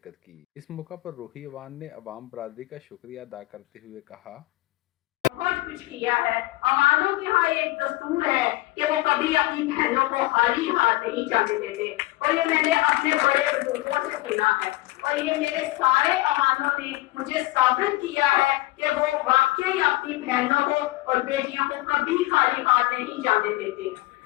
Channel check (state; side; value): quieter; right; 19.0 dB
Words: کی۔ اس موقع پر روحی عوان نے عوام برادری کا شکریہ ادا کرتے ہوئے کہا: بہت کچھ کیا ہے۔ عوانوں کے ہاں ایک دستور ہے کہ وہ کبھی اپنی بہنوں کو خالی ہاتھ نہیں جانے دیتے، اور یہ میں نے اپنے بڑے بزرگوں سے سنا ہے، اور یہ میرے سارے عوانوں نے مجھے ثابت کیا ہے کہ وہ واقعی اپنی بہنوں کو اور بیٹیوں کو کبھی خالی ہاتھ نہیں جانے دیتے۔